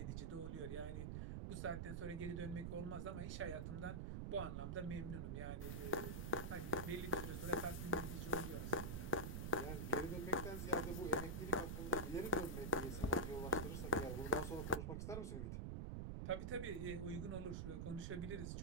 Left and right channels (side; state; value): right; noise; rumble, 2 dB below the sound